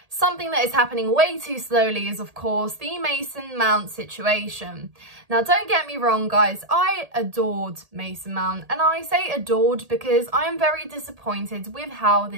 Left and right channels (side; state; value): left; late; 1.8 ms